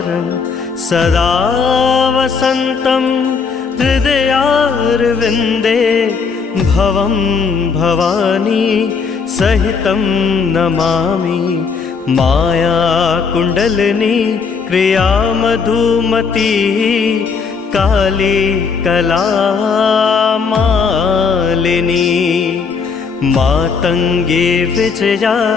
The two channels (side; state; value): right; quieter; 5.5 dB